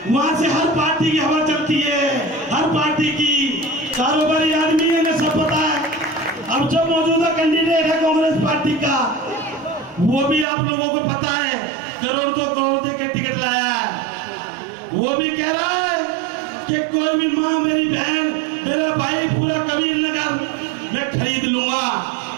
वहां से हर पार्टी की हवा चलती है, हर पार्टी की, कारोबारी आदमी है, इन्हें सब पता है। अब जो मौजूदा कैंडिडेट है कांग्रेस पार्टी का, वो भी आप लोगों को पता है करोड़ 2 करोड़ देके टिकट लाया है। वो भी कह रहा है कि कोई भी माँ, मेरी बहन, मेरा भाई, पूरा कबीर नगर मैं खरीद लूंगा।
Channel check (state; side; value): drops out; left; at 10.5 s